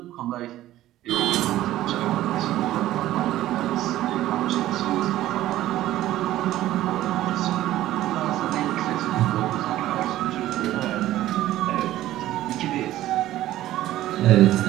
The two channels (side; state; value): left; quieter; 14.4 dB